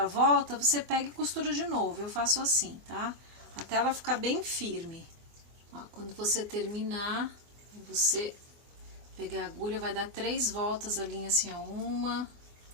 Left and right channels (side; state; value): left; late; 24 ms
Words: a volta, você pega e costura de novo. Eu faço assim, tá? Até ela ficar bem firme. Ó, quando você terminar, você pegar a agulha, vai dar 3 voltas a linha assim, ó. 1,